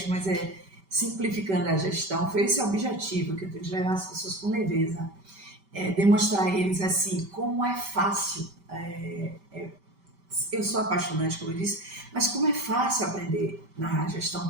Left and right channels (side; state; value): left; late; 5.1 ms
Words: mas é simplificando a gestão, foi esse o objetivo que eu tenho de levar as pessoas com leveza, demonstrar a eles, assim, como é fácil, eu sou apaixonante, como eu disse, mas como é fácil aprender na